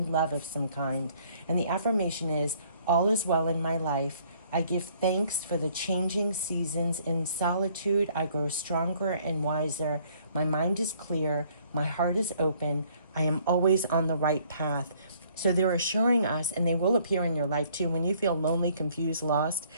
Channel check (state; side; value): inverted; both; correlation -0.62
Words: of some kind. And the affirmation is, all is well in my life. I give thanks for the changing seasons. In solitude, I grow stronger and wiser. My mind is clear. My heart is open. I am always on the right path. So they're assuring us, and they will appear in your life too. When you feel lonely, confused, lost,